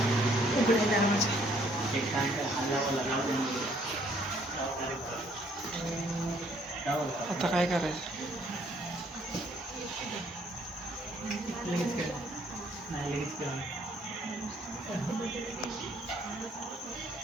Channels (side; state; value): both; normal; correlation 0.65